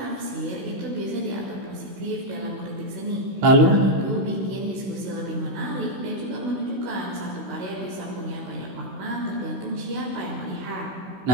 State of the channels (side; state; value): left; late; 16 ms